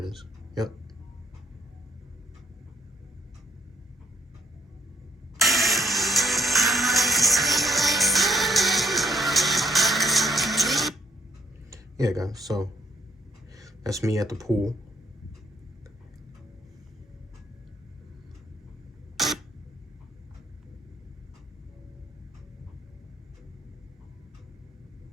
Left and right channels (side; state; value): both; normal; correlation 0.68